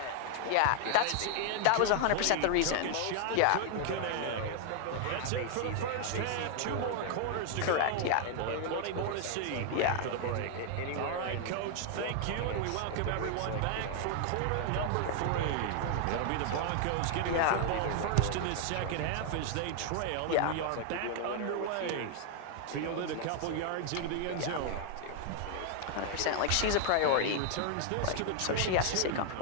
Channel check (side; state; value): both; different; correlation 0.00